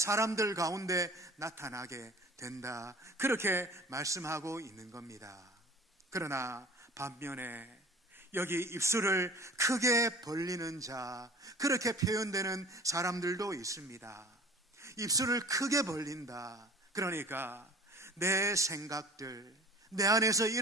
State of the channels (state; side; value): normal; both; correlation 0.44